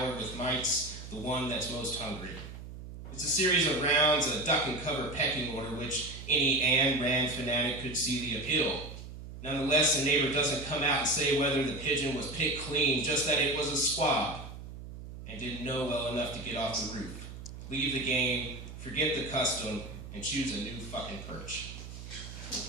with mites, the one that's most hungry. It's a series of rounds, a duck-and-cover pecking order, which any Ayn Rand fanatic could see the appeal. Nonetheless, the neighbor doesn't come out and say whether the pigeon was picked clean, just that it was a squab, and didn't know well enough to get off the roof. Leave the game, forget the custom, and choose a new fucking perch.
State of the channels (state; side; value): noise; right; hum, 12 dB below the sound